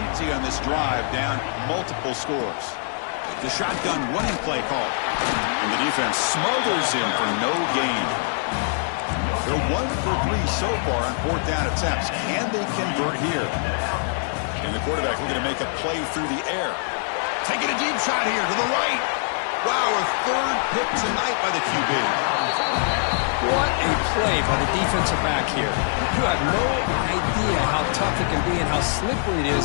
on this drive, down multiple scores. The shotgun running play call. And the defense smothers him for no gain. They're 1 for 3 so far on 4th down attempts. Can they convert here? And the quarterback looking to make a play through the air. Taking a deep shot here to the right. Wow, a 3rd pick tonight by the QB. What a play by the defensive back here. You have no idea how tough it can be and how slippery it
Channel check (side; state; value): right; silent; digital silence